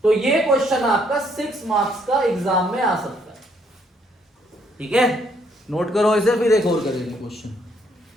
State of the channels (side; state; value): both; normal; correlation 0.69